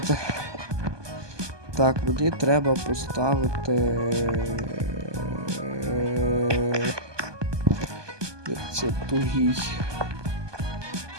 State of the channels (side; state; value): left; late; 1.2 ms